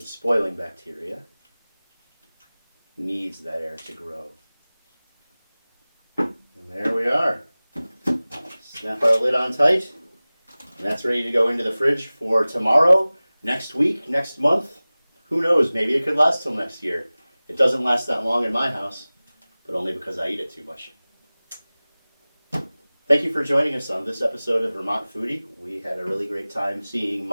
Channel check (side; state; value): both; inverted; correlation -0.99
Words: the spoiling bacteria needs that air to grow. And there we are. Snap our lid on tight, and that's ready to go into the fridge for tomorrow, next week, next month. Who knows, maybe it could last till next year. It doesn't last that long in my house, but only because I eat it too much. Thank you for joining us on this episode of Vermont Foodie. We had a really great time seeing